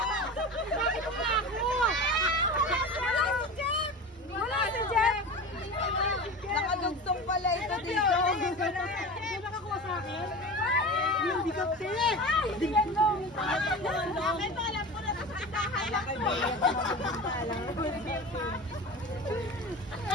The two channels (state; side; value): normal; both; correlation 0.31